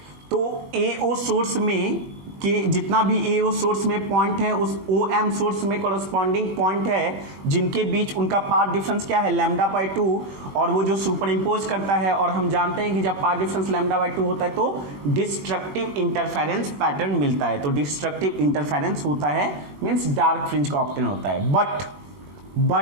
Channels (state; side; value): late; left; 20 ms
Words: तो AO source में के जितना भी AO सोर्स में पॉइंट है उस OM सोर्स में कॉरस्पॉन्डिंग पॉइंट है जिनके बीच उनका पाथ डिफरेंस क्या है, लैम्डा बाई 2, और वो जो सुपर इम्पोज करता है, और हम जानते हैं कि जब पाथ डिफरेंस लैम्डा बाई 2 होता है तो डिस्ट्रक्टिव इंटरफेरेंस पैटर्न मिलता है। तो डिस्ट्रक्टिव इंटरफेरेंस होता है मींस डार्क फ्रिंज का ऑप्टेन होता है। But